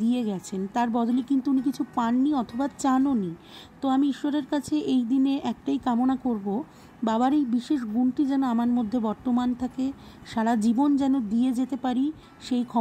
দিয়ে গেছেন, তার বদলে কিন্তু উনি কিছু পাননি অথবা চানওনি। তো আমি ঈশ্বরের কাছে এই দিনে একটাই কামনা করব, বাবার এই বিশেষ গুণটি যেন আমার মধ্যে বর্তমান থাকে, সারা জীবন যেন দিয়ে যেতে পারি, সেই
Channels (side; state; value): both; identical; correlation 1.00